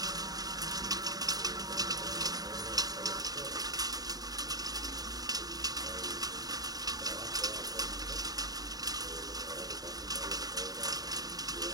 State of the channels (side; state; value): left; late; 0.18 ms